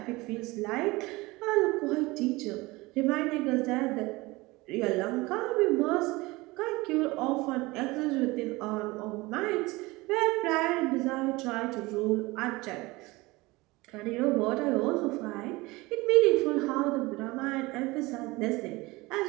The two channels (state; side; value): quieter; left; 22.0 dB